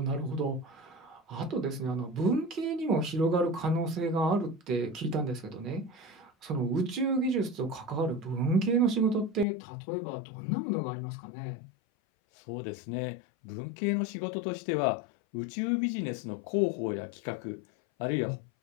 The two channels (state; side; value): drops out; right; at 9.5 s